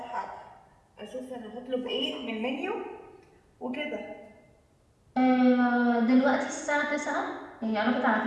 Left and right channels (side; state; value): both; identical; correlation 1.00